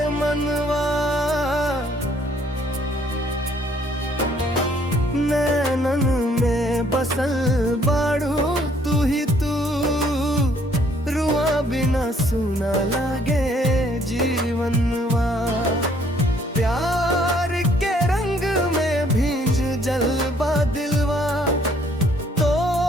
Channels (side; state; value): both; normal; correlation 0.63